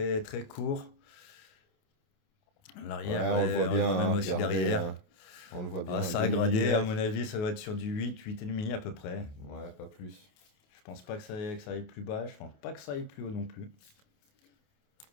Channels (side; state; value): right; late; 28 ms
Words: très court. L'arrière, Ouais, on le voit bien. même aussi regardez, derrière. hein. On le voit bien. Ah, ça a gradé, à mon avis, ça doit être sur du 8, 8,5 à peu près. Ouais, pas plus. Je pense pas que ça aille plus bas, je pense pas que ça aille plus haut non plus.